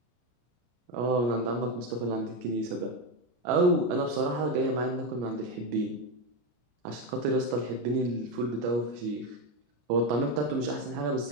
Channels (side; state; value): left; late; 33 ms